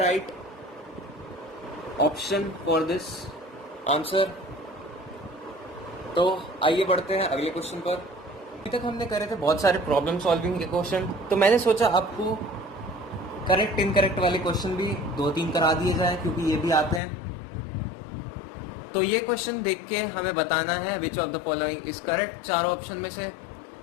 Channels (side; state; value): right; drops out; at 17.0 s